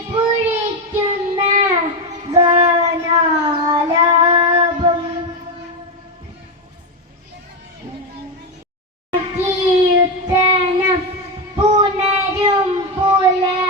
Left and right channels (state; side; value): normal; both; correlation 0.09